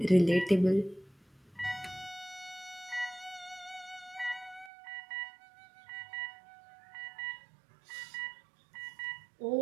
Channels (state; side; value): drops out; left; at 4.7 s